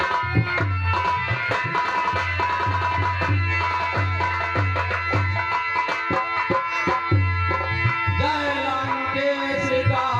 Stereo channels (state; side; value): identical; both; correlation 1.00